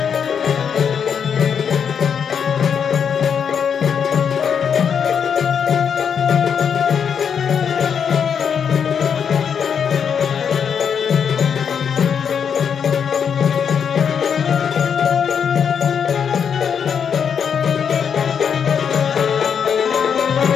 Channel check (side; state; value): right; quieter; 7.3 dB